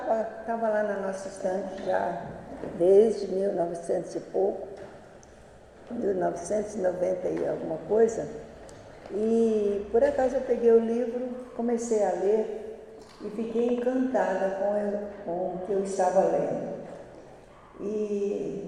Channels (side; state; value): both; identical; correlation 1.00